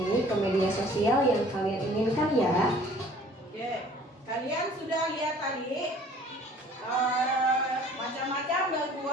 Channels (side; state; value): both; normal; correlation 0.52